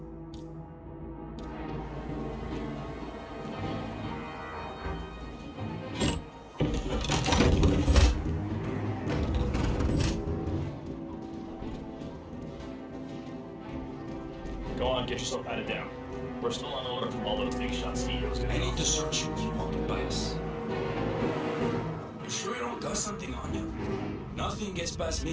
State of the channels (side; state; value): both; identical; correlation 1.00